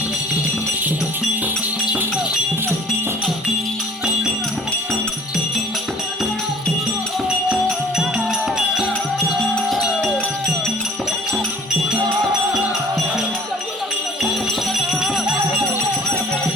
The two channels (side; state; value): both; normal; correlation 0.50